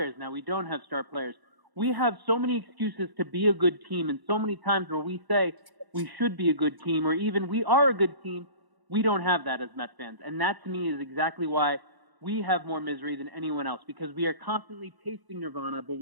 Now we don't have star players. We have so many excuses to be a good team, and so many times where we say we should be a good team or even we are a good team, we don't have that as Mets fans. And that, to me, is exactly why we have more misery than anyone else, because we are constantly tasting nirvana, but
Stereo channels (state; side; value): late; left; 1.0 ms